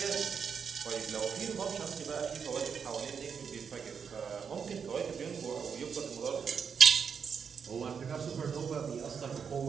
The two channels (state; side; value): quieter; left; 6.6 dB